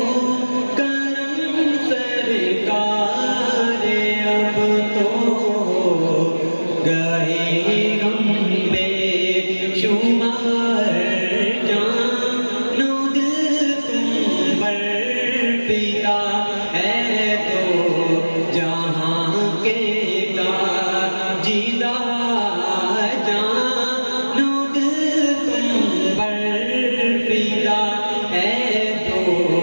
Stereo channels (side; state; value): both; inverted; correlation -1.00